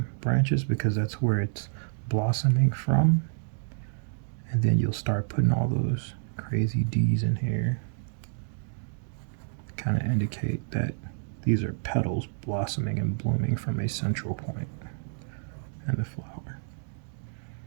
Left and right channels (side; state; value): left; silent; digital silence